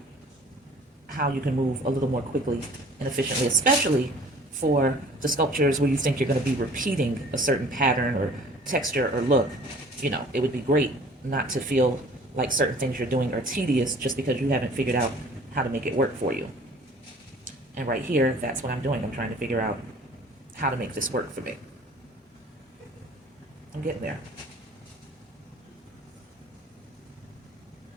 how you can move a little more quickly and efficiently, especially for the sculptures where you think you're going to be repeating a certain pattern or texture or look. You know, it would be great not to feel like certain things you're doing are tedious just because you haven't figured out how to make it work for you. And right here, that's what I'm doing. I'm trying to figure out how to make this work for me. I'm getting there.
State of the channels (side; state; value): both; normal; correlation 0.50